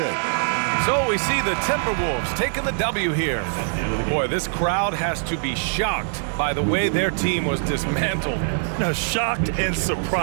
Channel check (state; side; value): silent; left; digital silence